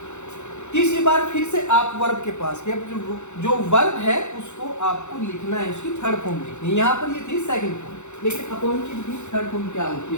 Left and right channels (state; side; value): late; right; 0.83 ms